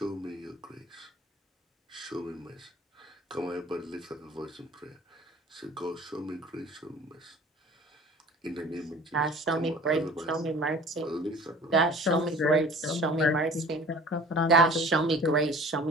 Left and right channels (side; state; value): both; normal; correlation 0.46